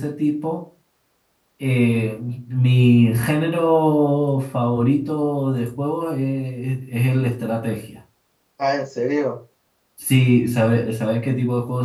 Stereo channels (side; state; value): both; identical; correlation 1.00